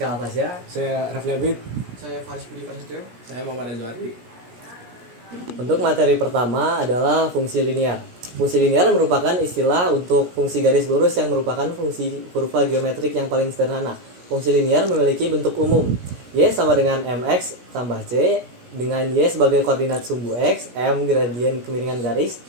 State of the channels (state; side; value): late; left; 17 ms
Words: Alfasya. Saya Rafli Abid. Saya Faris Budi Prasetyo. Saya Muhammad Azwari. Untuk materi pertama adalah fungsi linear. Fungsi linear merupakan istilah untuk fungsi garis lurus yang merupakan fungsi kurva geometrik yang paling sederhana. Fungsi linear memiliki bentuk umum. Y sama dengan mx tambah c, dengan y sebagai koordinat sumbu x, m gradien kemiringan garis,